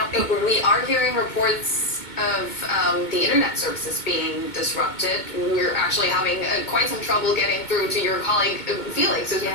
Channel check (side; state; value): right; late; 2.2 ms